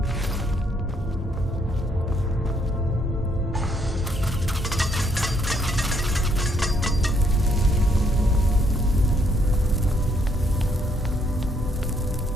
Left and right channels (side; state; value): both; normal; correlation 0.71